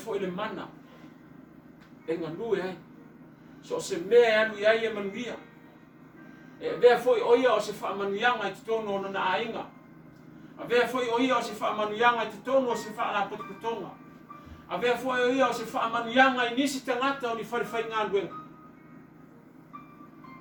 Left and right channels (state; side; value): identical; both; correlation 1.00